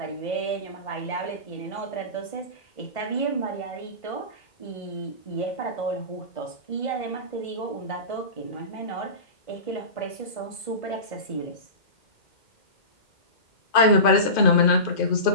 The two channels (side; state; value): right; late; 2.5 ms